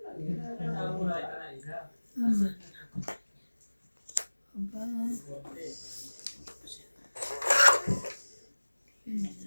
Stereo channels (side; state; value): both; inverted; correlation -1.00